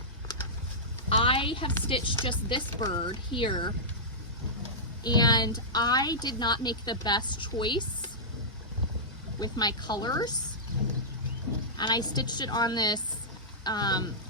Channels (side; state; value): both; normal; correlation -0.14